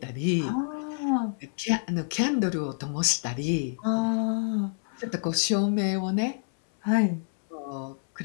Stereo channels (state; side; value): silent; right; 60 dB below the other